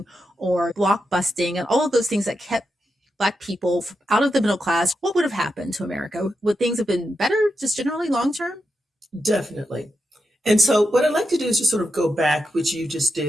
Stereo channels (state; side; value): normal; both; correlation 0.86